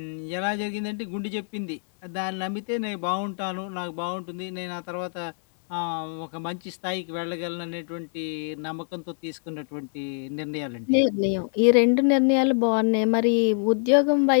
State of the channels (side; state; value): right; silent; digital silence